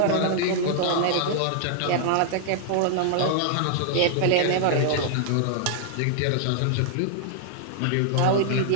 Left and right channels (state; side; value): different; both; correlation -0.01